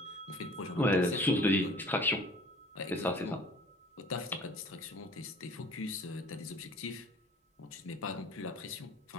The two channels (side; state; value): both; normal; correlation 0.49